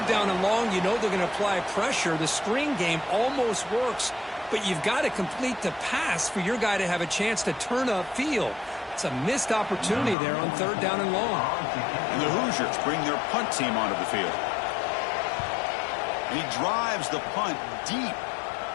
down and long. You know they're going to apply pressure. The screen game almost works. But you've got to complete the pass for your guy to have a chance to turn upfield. It's a missed opportunity there on 3rd down and long. And the Hoosiers bring their punt team onto the field. And he drives the punt deep.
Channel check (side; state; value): right; drops out; at 10.2 s